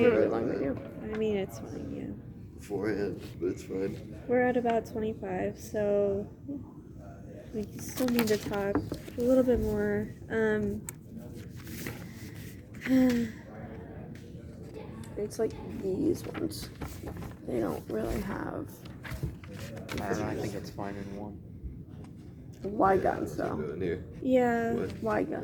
read long that video. I mean, it's fine, yeah. beforehand, but it's fine. We're at about 25, so we still need to talk a little bit more. It's like these ones. They don't really have I don't know. I think it's fine in one. Y guns What's it though. doing here? Yeah, What? Y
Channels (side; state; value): both; identical; correlation 1.00